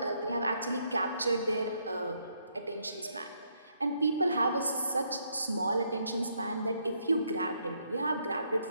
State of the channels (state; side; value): inverted; both; correlation -0.74